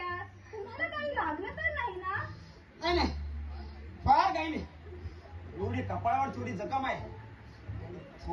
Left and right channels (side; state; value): both; identical; correlation 1.00